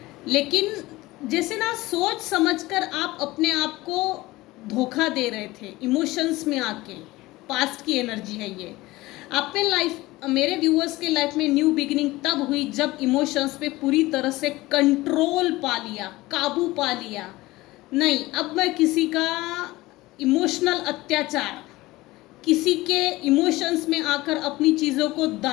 लेकिन जैसे ना सोच समझकर आप अपने आप को धोखा दे रहे थे इमोशंस में आके। पास्ट की एनर्जी है ये। आप में लाइफ, मेरे व्यूअर्स के लाइफ में न्यू बिगिनिंग तब हुई जब इमोशंस पे पूरी तरह से कंट्रोल पा लिया, काबू पा लिया। नहीं, अब मैं किसी का इमोशनल अत्याचार, किसी के इमोशंस में आकर अपनी चीज़ों को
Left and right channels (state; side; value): quieter; right; 19.3 dB